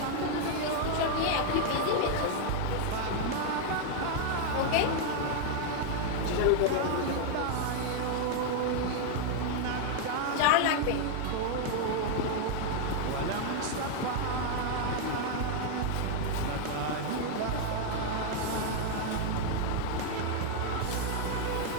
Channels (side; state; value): both; different; correlation 0.00